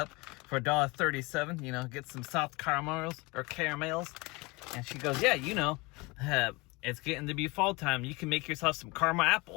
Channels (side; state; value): right; quieter; 25.1 dB